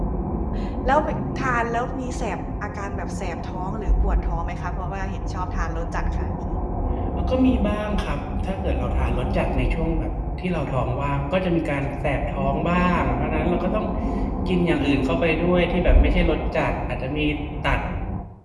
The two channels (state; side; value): identical; both; correlation 1.00